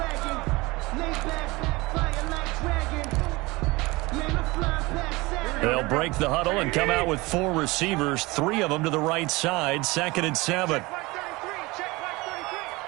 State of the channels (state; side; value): quieter; left; 22.6 dB